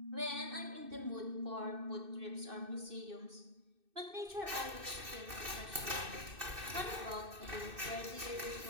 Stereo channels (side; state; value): left; late; 2.6 ms